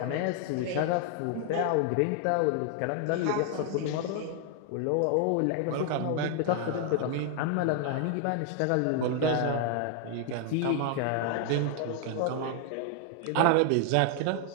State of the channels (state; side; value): different; both; correlation 0.00